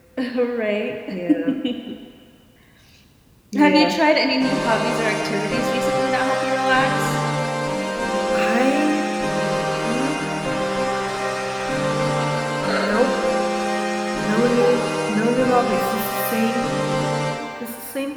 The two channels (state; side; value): identical; both; correlation 1.00